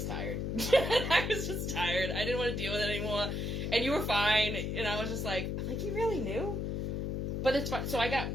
tired. I was just tired. I didn't want to deal with it anymore. And you were fine, and I was just like, you really knew? But it's fun. So I got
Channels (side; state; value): left; noise; hum, 1 dB below the sound